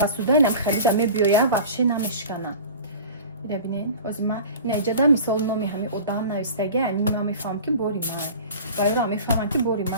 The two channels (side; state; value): both; inverted; correlation -0.38